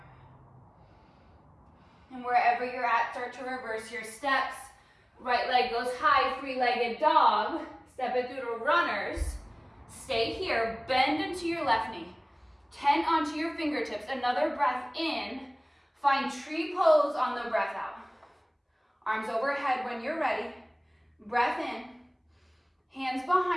And wherever you're at, start to reverse your steps. Right leg goes high, 3-legged dog. Step it through to runners. Stay here, bend into your left knee. 10 onto your fingertips. Another breath in. Find tree pose on the breath out. Arms overhead when you're ready. Breath in. Hands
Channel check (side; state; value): both; identical; correlation 1.00